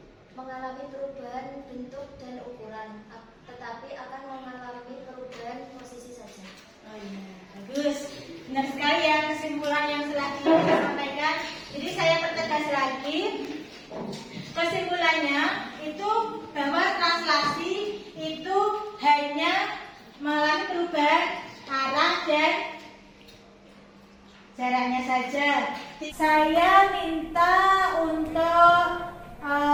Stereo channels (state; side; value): identical; both; correlation 1.00